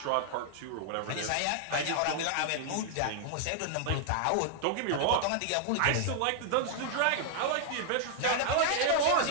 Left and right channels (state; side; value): different; both; correlation 0.00